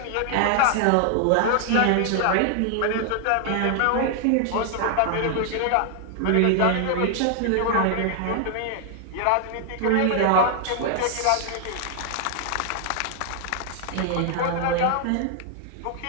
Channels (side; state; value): both; different; correlation 0.00